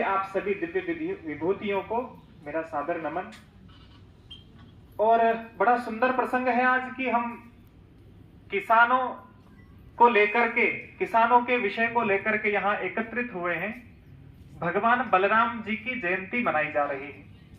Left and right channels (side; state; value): both; identical; correlation 1.00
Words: आप सभी दिव्य विभूतियों को मेरा सादर नमन। और बड़ा सुंदर प्रसंग है आज कि हम किसानों को लेकर के, किसानों के विषय को लेकर के यहाँ एकत्रित हुए हैं। भगवान बलराम जी की जयंती मनाई जा रही है।